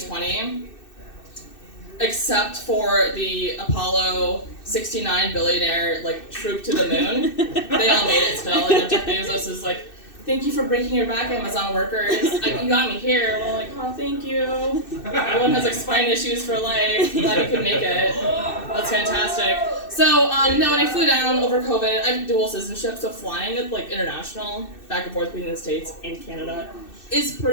Except for the Apollo 69 billionaire, troop to the moon. They all made it still, and Jeff Bezos is like, thank you for breaking your back, Amazon workers. You got me here. We're like, oh, thank you. Everyone has, spine issues for life. Glad you could make it. That's fantastic. So, when I flew down over COVID, I have dual citizenship, so flying, international, back and forth between the States and Canada, is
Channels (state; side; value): late; right; 2.6 ms